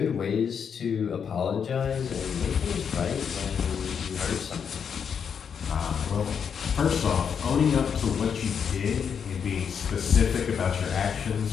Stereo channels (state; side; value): quieter; right; 7.1 dB